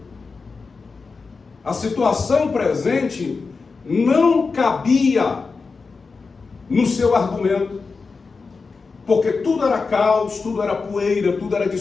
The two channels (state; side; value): quieter; right; 4.5 dB